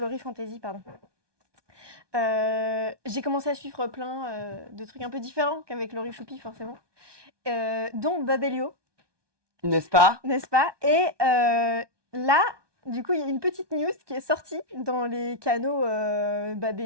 Fantasy, pardon. J'ai commencé à suivre plein de trucs un peu différents qu'avec Laurie Choupi, forcément. Dont Babelio. N'est-ce pas? N'est-ce pas? Et là, du coup, il y a une petite news qui est sortie dans les canaux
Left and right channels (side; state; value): left; late; 1.2 ms